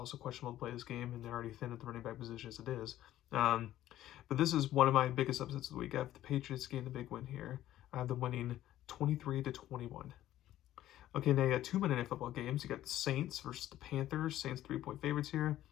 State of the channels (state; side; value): quieter; right; 13.4 dB